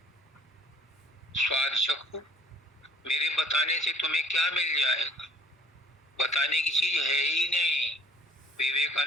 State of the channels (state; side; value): normal; both; correlation 0.56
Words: स्वाद चखो। मेरे बताने से तुम्हें क्या मिल जाएगा? बताने की चीज है ही नहीं।